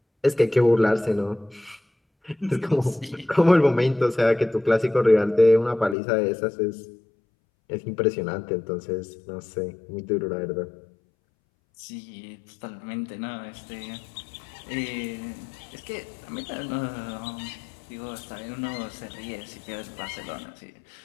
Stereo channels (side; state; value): right; drops out; at 6.0 s